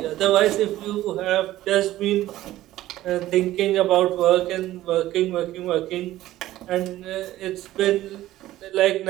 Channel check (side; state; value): left; quieter; 14.9 dB